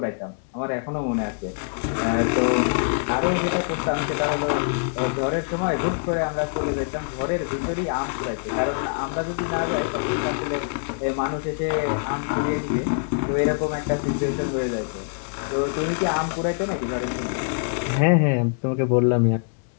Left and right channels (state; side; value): silent; right; digital silence